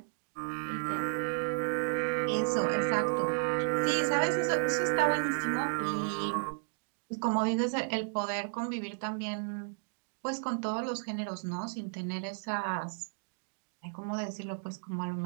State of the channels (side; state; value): left; silent; digital silence